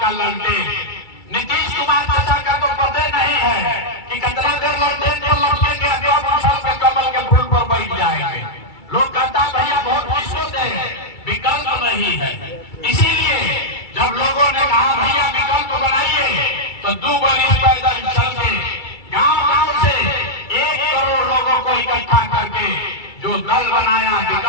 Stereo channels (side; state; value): right; late; 2.3 ms